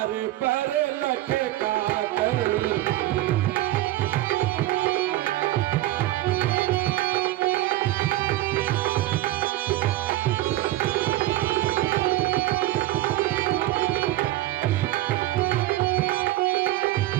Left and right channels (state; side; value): quieter; left; 16.1 dB